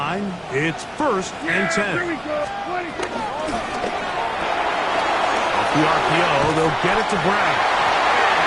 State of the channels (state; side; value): identical; both; correlation 1.00